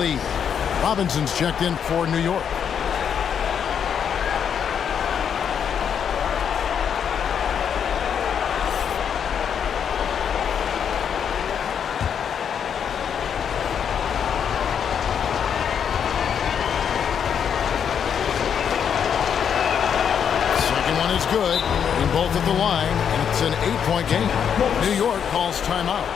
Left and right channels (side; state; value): right; quieter; 7.9 dB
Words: Robinson's checked in for New York. Second one is good, and both at the line, and it's an 8-point game. New York calls timeout.